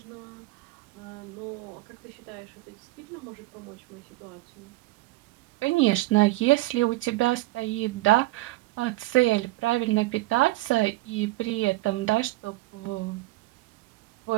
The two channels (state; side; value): quieter; left; 19.5 dB